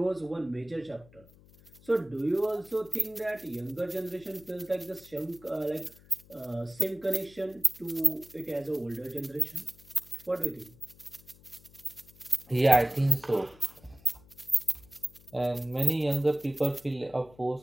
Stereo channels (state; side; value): noise; left; hum, 24 dB below the sound